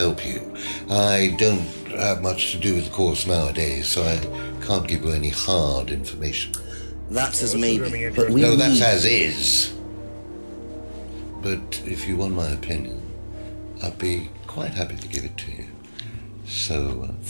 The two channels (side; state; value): both; inverted; correlation -1.00